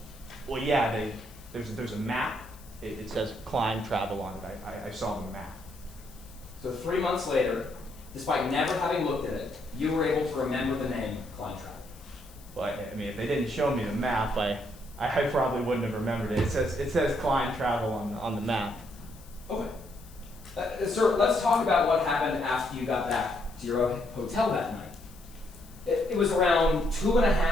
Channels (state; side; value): noise; left; hiss, 23 dB below the sound